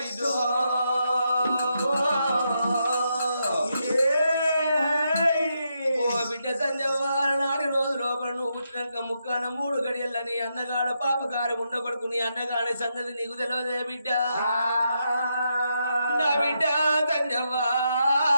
బిడ్డ సంజవారు నాటి రోజు లోపల నువ్వు పుట్టినాక ముక్కాన 3 గడియల్లని అన్నగాడ పాపగారు ఉండకొడుకు నీ అన్నగాడి సంగతి నీకు తెలియదే బిడ్డ. నా బిడ్డ సంజవ్వా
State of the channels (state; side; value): inverted; both; correlation -0.82